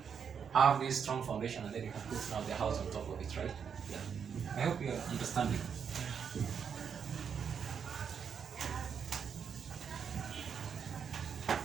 have this strong foundation, and then you can put now the house on top of it, right? Yeah. I hope you are understanding.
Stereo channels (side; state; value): left; quieter; 7.1 dB